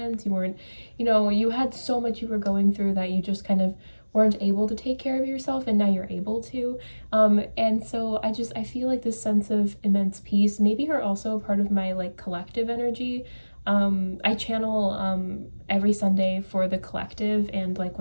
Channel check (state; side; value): inverted; both; correlation -1.00